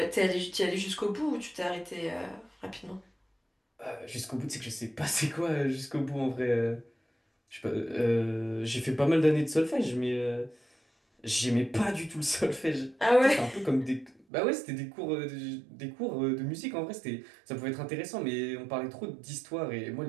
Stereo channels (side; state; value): left; drops out; at 14.2 s